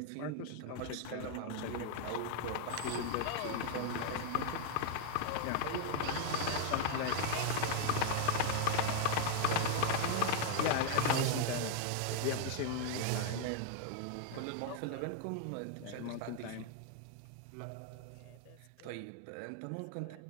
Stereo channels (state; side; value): different; both; correlation 0.00